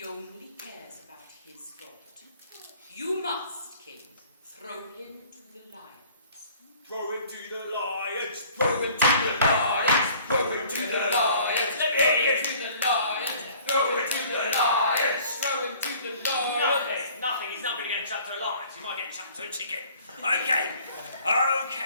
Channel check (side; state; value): both; inverted; correlation -0.52